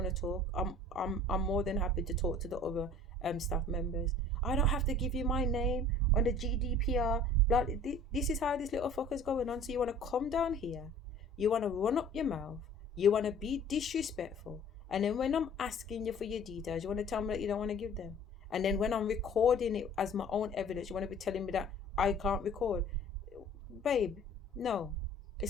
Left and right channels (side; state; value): both; normal; correlation 0.48